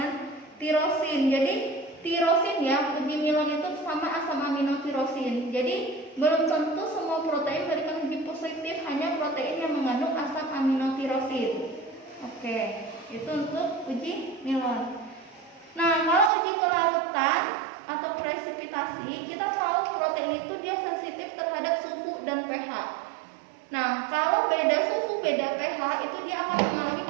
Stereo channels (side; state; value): left; drops out; at 16.3 s